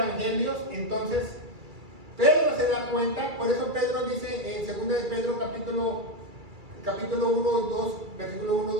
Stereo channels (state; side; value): late; left; 2.3 ms